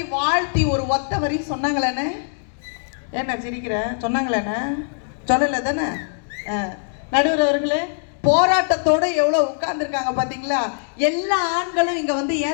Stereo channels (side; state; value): right; silent; digital silence